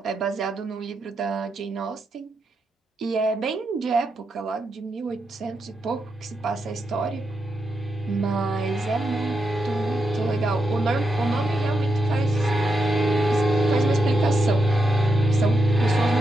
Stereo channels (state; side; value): normal; both; correlation 0.84